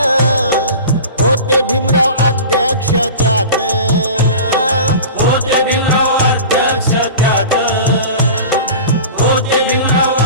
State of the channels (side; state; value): both; inverted; correlation -0.36